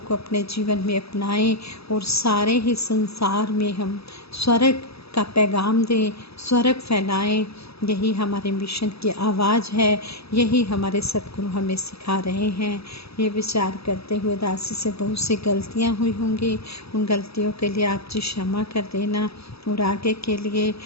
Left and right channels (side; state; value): right; late; 0.77 ms